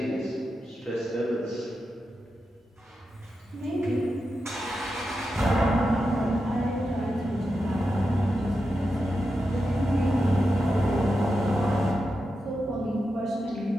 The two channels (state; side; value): normal; both; correlation 0.89